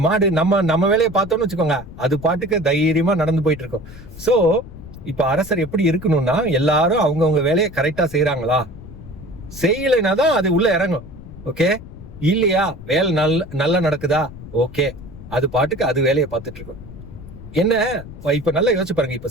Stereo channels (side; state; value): left; noise; rumble, 15 dB below the sound